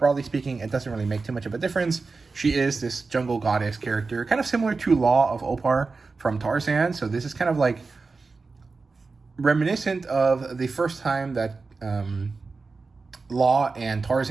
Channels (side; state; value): left; quieter; 4.2 dB